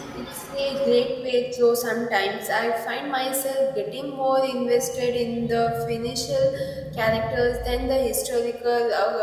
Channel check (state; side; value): identical; both; correlation 1.00